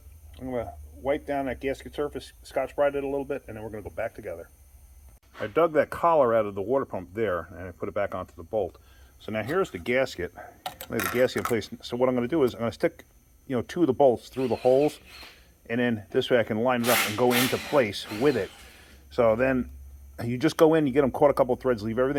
going to wipe down that gasket surface, Scotch-Brite it a little bit, and then we're going to go back together. I dug that collar out of the water pump there, and I put it back onto the bolt. So now here's the gasket. Lay the gasket in place. So what I'm going to do is I'm going to stick, you know, 2 of the bolts through the holes, and then this way I can line it up and go into place with it. So then you just go in, you get them caught a couple of threads, leave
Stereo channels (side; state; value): both; identical; correlation 1.00